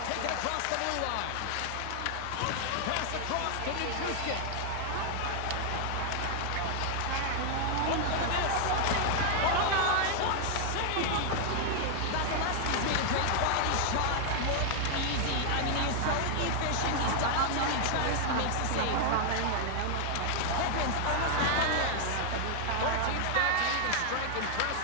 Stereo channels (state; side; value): different; both; correlation 0.00